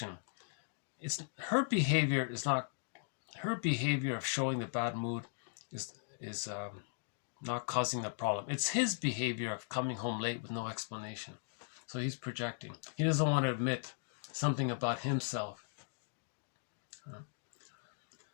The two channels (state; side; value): silent; right; digital silence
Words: Her behavior of showing the bad mood is not causing the problem. It's his behavior of coming home late with no explanation. So he's projecting. He doesn't want to admit something about himself.